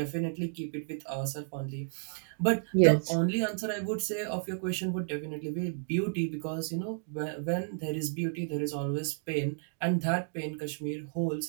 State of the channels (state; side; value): silent; left; digital silence